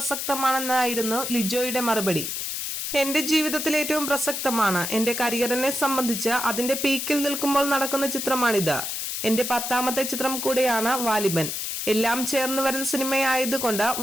ലിജോയുടെ മറുപടി. എന്റെ ജീവിതത്തിൽ ഏറ്റവും പ്രസക്തമാണ്. എന്റെ കരിയറിനെ സംബന്ധിച്ച് അതിന്റെ പീക്കിൽ നിൽക്കുമ്പോൾ നടക്കുന്ന ചിത്രമാണിത്. എന്റെ 10ാമത്തെ ചിത്രം കൂടെയാണ് വാലിബൻ. എല്ലാം ചേർന്ന് വരുന്ന സിനിമയായതുകൊണ്ട്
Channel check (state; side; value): noise; left; hiss, 3 dB below the sound